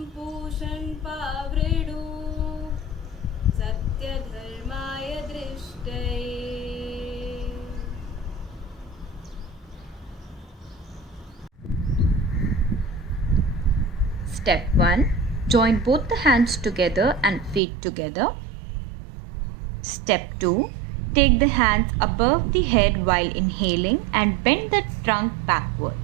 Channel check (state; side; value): drops out; left; at 17.6 s